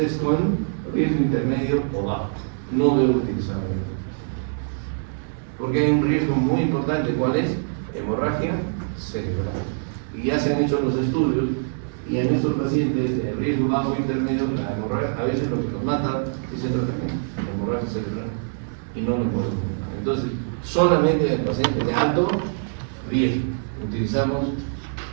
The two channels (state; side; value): silent; left; digital silence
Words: con riesgo intermedio o bajo. No debo utilizarlo. Porque hay un riesgo muy importante, ¿cuál es? Hemorragia cerebral. Y ya se han hecho los estudios, y en estos pacientes de riesgo bajo e intermedio, la hemorragia, a veces lo que nos mata es el tratamiento, la hemorragia cerebral, y no lo podemos matar. Entonces, solamente en el paciente de alto riesgo utilizamos